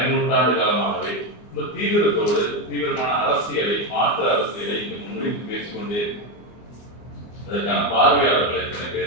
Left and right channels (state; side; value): late; right; 24 ms